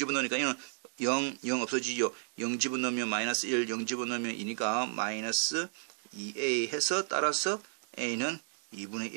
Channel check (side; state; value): left; silent; digital silence